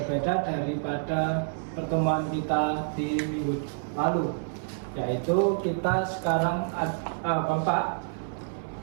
berbeda daripada pertemuan kita di minggu lalu, yaitu kita sekarang Bapak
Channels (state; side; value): silent; left; 59 dB below the other